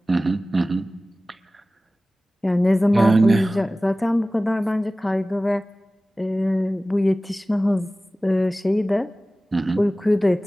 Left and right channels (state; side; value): normal; both; correlation 0.97